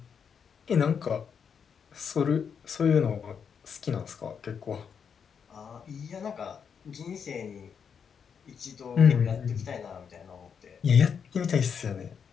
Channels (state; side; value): quieter; right; 6.9 dB